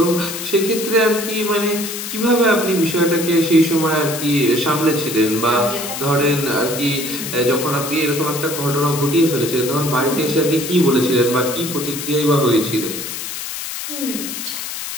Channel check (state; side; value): noise; left; hiss, 7 dB below the sound